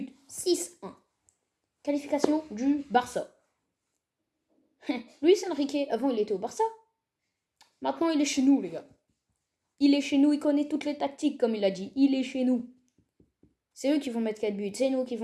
6-1. Qualification du Barça. Luis Enrique, avant il était au Barça. Maintenant il est chez nous, les gars. Il est chez nous, il connaît toutes les tactiques, comme il a dit. Il est chez nous. C'est eux qui vont mettre 4 buts, c'est nous qui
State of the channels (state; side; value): identical; both; correlation 1.00